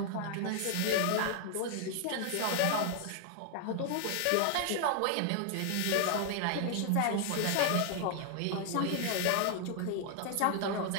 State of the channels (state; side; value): different; both; correlation 0.00